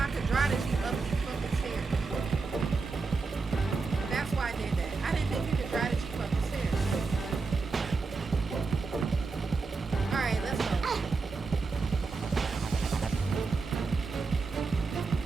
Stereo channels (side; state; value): left; quieter; 4.3 dB